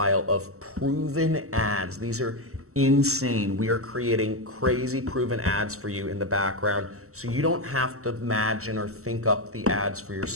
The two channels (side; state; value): left; late; 0.64 ms